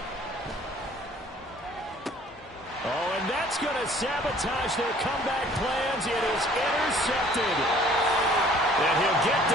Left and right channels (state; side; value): normal; both; correlation 0.54